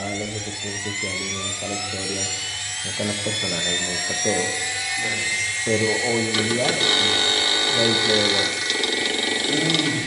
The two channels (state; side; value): identical; both; correlation 1.00